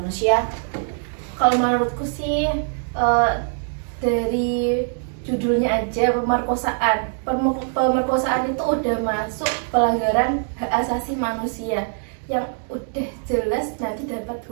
Kalau menurutku sih dari judulnya aja pemerkosaan. Pemerkosaan itu udah masuk pelanggaran hak asasi manusia yang udah jelas nanti dapat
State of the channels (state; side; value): silent; left; digital silence